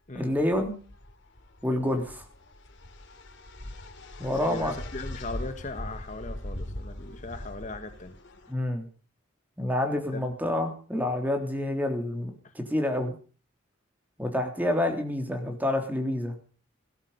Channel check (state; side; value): normal; both; correlation 0.68